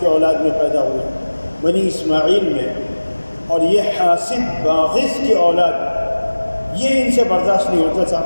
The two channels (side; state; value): both; inverted; correlation -1.00